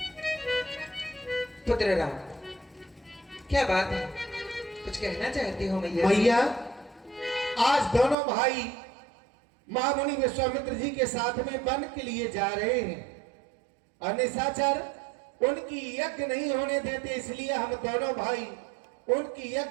पुत्र राम, क्या बात है, कुछ कहना चाहते हो मैया? मैया, आज दोनों भाई महामुनि विश्वामित्र जी के साथ में वन के लिए जा रहे हैं और निशाचर उनकी यज्ञ नहीं होने देते, इसलिए हम दोनों भाई उनकी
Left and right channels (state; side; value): drops out; left; at 8.2 s